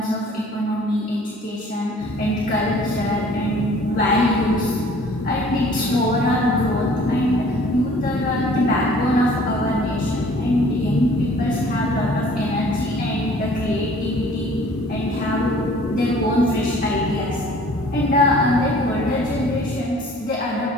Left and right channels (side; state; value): both; normal; correlation 0.52